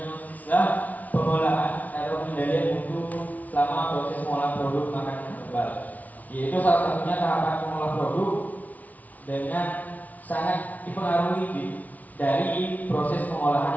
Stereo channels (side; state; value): right; late; 0.074 ms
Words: pengolahan atau pengendalian mutu selama proses pengolahan produk makanan herbal. Yaitu salah satunya tahapan pengolah produk dengan sangat dipengaruhi dari proses pengolahan